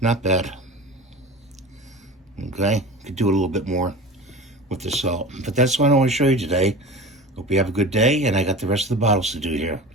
Not bad. Okay, could do a little bit more with the salt. But that's what I want to show you today. Hope you have a good day, and I got the rest of the bottles to do here.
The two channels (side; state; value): both; normal; correlation 0.34